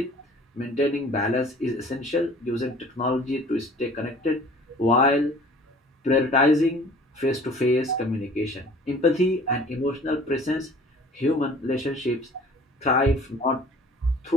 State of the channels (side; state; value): both; normal; correlation 0.49